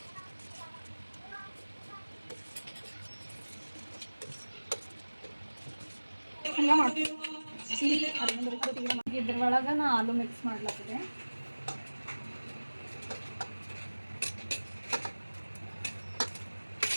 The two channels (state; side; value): inverted; both; correlation -1.00